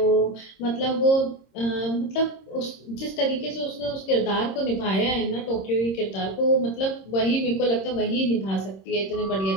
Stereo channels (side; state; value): right; late; 26 ms